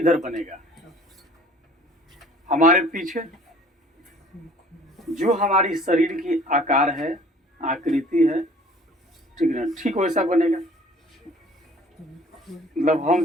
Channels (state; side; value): normal; both; correlation 0.52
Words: बनेगा? हमारे पीछे। जो हमारी शरीर की आकार है, आकृति है, ठीक है, ठीक वैसा बनेगा। मतलब